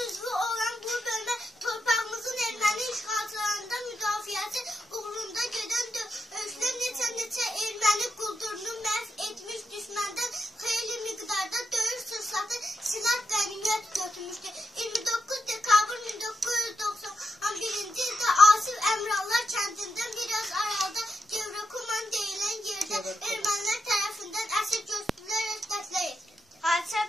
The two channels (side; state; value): both; normal; correlation 0.84